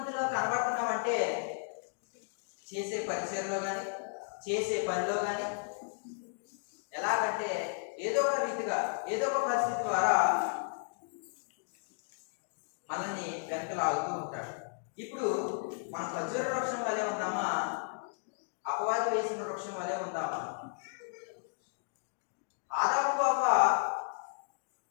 కనబడుతున్నామంటే చేసే పరిచయంలో కానీ, చేసే పనిలో కానీ, ఎలాగంటే ఏదో ఒక రీతిగా, ఏదో ఒక పరిస్థితి ద్వారా మనల్ని వెనక లాగుతూ ఉంటాడు. ఇప్పుడు మన ఖర్జూర వృక్షం వలె ఉందామా? అపవాది వేసిన వృక్షం వలె ఉందామా? ఆదాము అవ్వ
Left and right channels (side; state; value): right; silent; digital silence